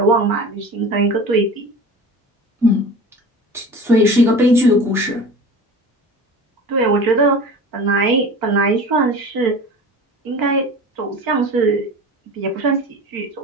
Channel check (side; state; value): both; normal; correlation 0.36